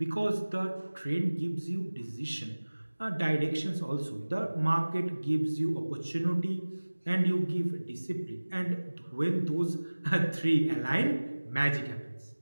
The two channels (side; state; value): both; inverted; correlation -1.00